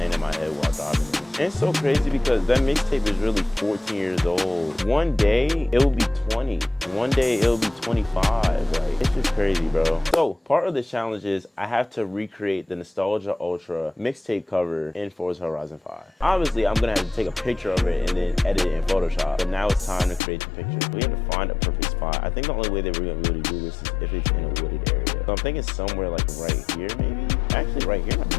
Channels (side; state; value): right; drops out; at 20.2 s